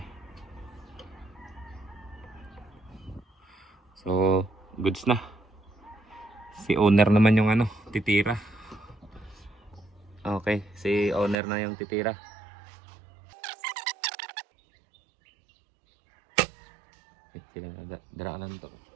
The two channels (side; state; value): left; drops out; at 11.4 s